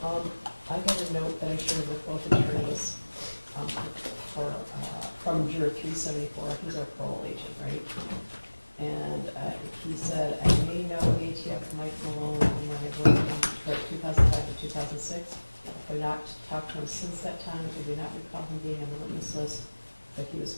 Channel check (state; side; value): inverted; both; correlation -1.00